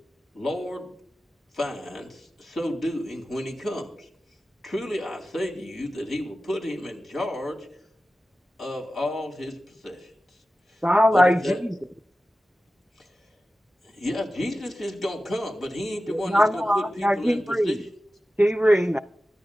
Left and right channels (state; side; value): normal; both; correlation 0.94